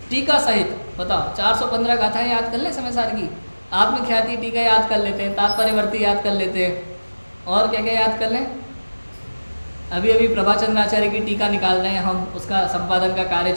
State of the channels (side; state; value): both; inverted; correlation -1.00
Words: टीका सहित? बताओ 415 गाथाएं याद कर लें समय सार की, आत्मख्याति टीका याद कर लेते हैं, तात्पर्यवर्ती याद कर लेते हैं, और क्या क्या याद कर लें? अभी अभी प्रभाचंद्राचार्य की टीका निकाल रहे हैं हम, उसका संपादन का कार्य